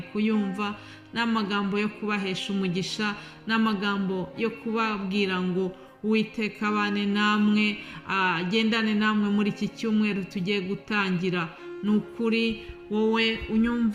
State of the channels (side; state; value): both; identical; correlation 1.00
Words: kuyumva, ni amagambo yo kubahesha umugisha, ni amagambo yo kubabwira ngo Uwiteka abane namwe, agendane namwe muri iki cyumweru tugiye gutangira. Ni ukuri wowe